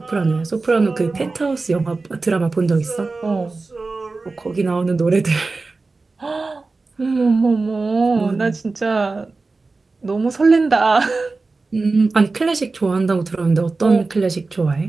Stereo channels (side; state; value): left; quieter; 3.7 dB